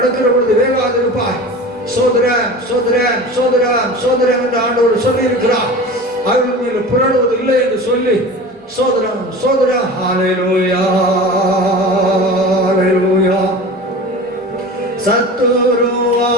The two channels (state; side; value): normal; both; correlation 0.35